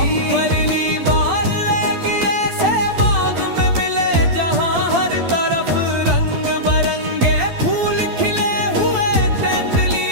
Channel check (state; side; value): late; left; 12 ms